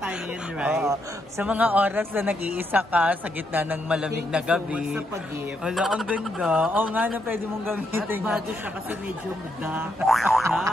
ngayon, right? Sa mga oras na nag-iisa ka sa gitna ng malamig na gabi. Thank you so much sa pag-gift. Wala, ang ganda. Oo nga na pwede mong gamitin. At bago siya kasi medyo dark siya.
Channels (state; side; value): normal; both; correlation 0.79